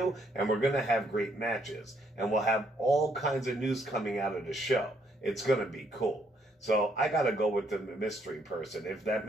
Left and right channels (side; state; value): both; normal; correlation 0.71